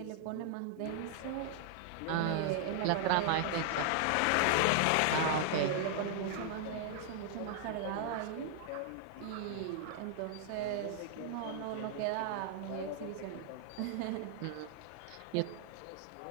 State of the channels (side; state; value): both; different; correlation 0.00